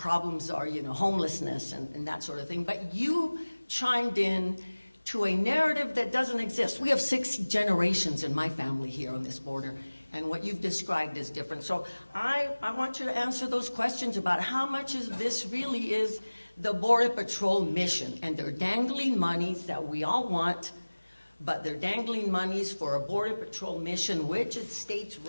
are, you know, homelessness and that sort of thing. But you chimed in to a narrative that doesn't exist. We have 6 generations in my family here on this border, and what you've described is different. So I want you to answer those questions about how much of this really is the Border Patrol mission, and they're dangling monies that we all want, but they're dangling monies for a Border Patrol mission, which it states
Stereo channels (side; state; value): both; inverted; correlation -1.00